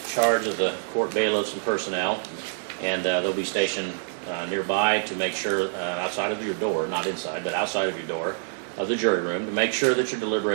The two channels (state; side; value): silent; left; digital silence